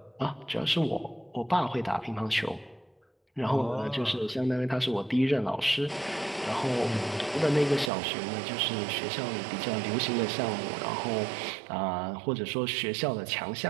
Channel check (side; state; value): left; drops out; at 7.9 s